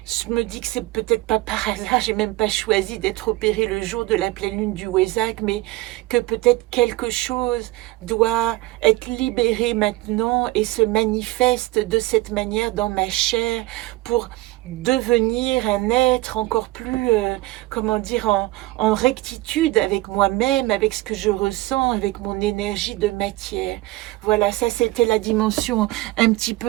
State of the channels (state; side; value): quieter; left; 18.8 dB